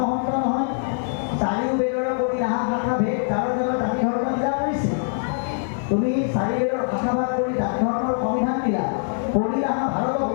মহন্ত নহয়, চাৰিও বেদৰ কৰি নাহা শাখা ভেদ কাৰো জনত জাতি ধৰ্ম দিলা কৰিছে। তুমি চাৰি বেদৰ শাখা ভাগ কৰি জাতি ধৰ্মৰ সংবিধান দিলা, পঢ়ি নাহা ভাৰত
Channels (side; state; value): right; silent; 56 dB below the other